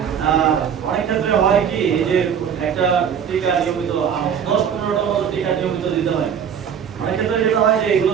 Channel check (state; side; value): quieter; left; 8.0 dB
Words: অনেক ক্ষেত্রে হয় কি এই যে একটা টিকা নিয়মিত 10-15টা মতো টিকা নিয়মিত দিতে হয়। অনেক ক্ষেত্রে যেটা হয় যে এগুলো